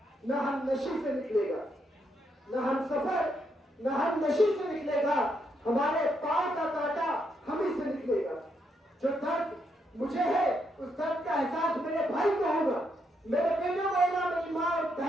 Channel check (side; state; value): both; normal; correlation 0.78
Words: न हम नशी से निकलेगा, न हम सफर न हम नशी से निकलेगा, हमारे पांव का कांटा हम ही से निकलेगा। जो दर्द मुझे है उस दर्द का एहसास मेरे भाई को होगा, मेरे बेटे को होगा, मेरी माँ और